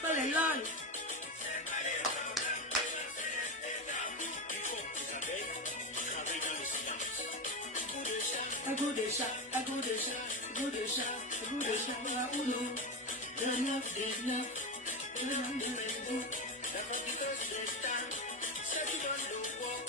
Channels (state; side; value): normal; both; correlation 0.18